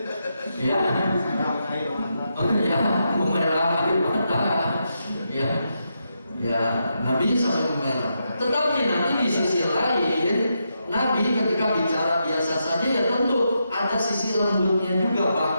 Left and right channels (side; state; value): both; inverted; correlation -0.83